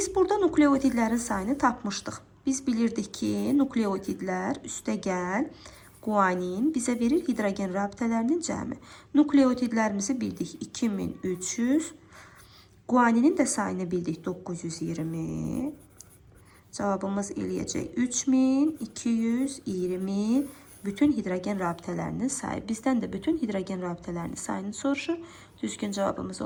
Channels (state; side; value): identical; both; correlation 1.00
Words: burada nukleotidlərin sayını tapmışdıq. Biz bilirdik ki, nukleotidlər üstəgəl guanin bizə verir hidrogen rabitələrinin cəmi. Nukleotidlərimizi bildik 2300. Guaninin də sayını bildik 920. Cavabımız eləyəcək 3220 bütün hidrogen rabitələrinin sayı. Bizdən də bütün hidrogen rabitələrinin sayını soruşur. Düzgün cavabımız